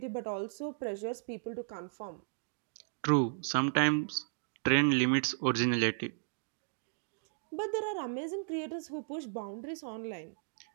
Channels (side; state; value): left; silent; digital silence